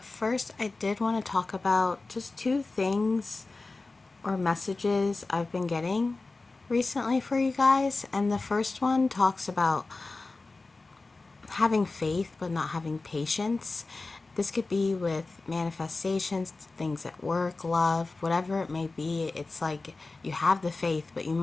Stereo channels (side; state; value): right; quieter; 3.5 dB